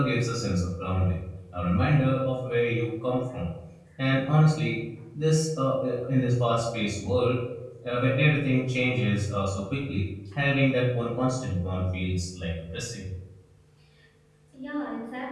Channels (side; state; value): both; identical; correlation 1.00